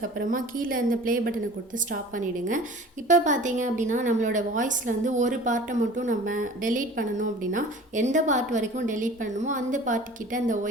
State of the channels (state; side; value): normal; both; correlation 0.43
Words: கீழே இந்த ப்ளே பட்டனை கொடுத்து ஸ்டாப் பண்ணிவிடுங்க. இப்போ பார்த்தீங்க அப்படின்னா நம்மளோட வாய்ஸில் வந்து ஒரு பார்ட்டை மட்டும் நம்ம டெலீட் பண்ணணும் அப்படின்னா எந்த பார்ட் வரைக்கும் டெலீட் பண்ணணுமோ அந்த பார்ட்டுக்கிட்ட இந்த